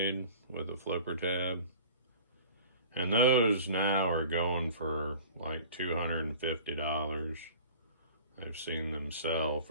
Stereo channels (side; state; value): both; inverted; correlation -0.44